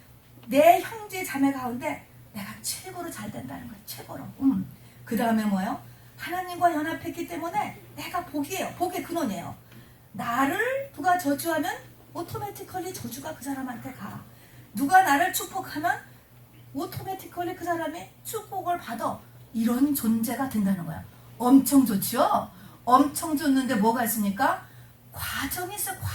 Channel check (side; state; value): both; identical; correlation 1.00